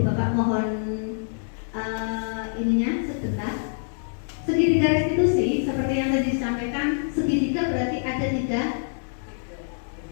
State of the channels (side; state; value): right; silent; digital silence